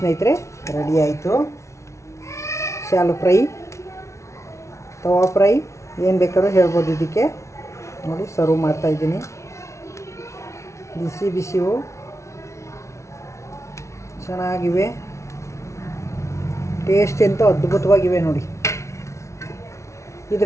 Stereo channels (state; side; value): late; right; 0.14 ms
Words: ರೆಡಿ ಆಯಿತು. ಶಾಲು ಫ್ರೈ, ತವಾ ಫ್ರೈ, ಏನು ಬೇಕಾದ್ರೂ ಹೇಳ್ಬೋದು ಇದಕ್ಕೆ. ನೋಡಿ, ಸರ್ವ್ ಮಾಡ್ತಾಯಿದ್ದೀನಿ. ಬಿಸಿವು ಚೆನ್ನಾಗಿವೆ, ಟೇಸ್ಟ್ ಎಂತ ಅದ್ಭುತವಾಗಿವೆ ನೋಡಿ.